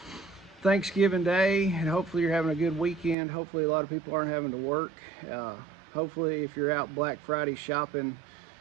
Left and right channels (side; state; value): left; drops out; at 3.2 s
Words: Thanksgiving Day and hopefully you're having a good weekend. Hopefully a lot of people aren't having to work. Hopefully if you're out Black Friday shopping,